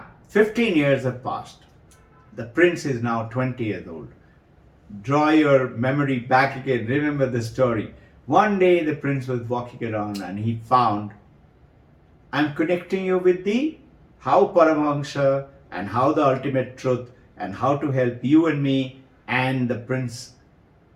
15 years have passed. The prince is now 20 years old. Draw your memory back again. Remember the story. One day the prince was walking around and he found, I'm connecting you with the how Paramahansa and how the ultimate truth and how to help you and me, and the prince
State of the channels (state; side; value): identical; both; correlation 1.00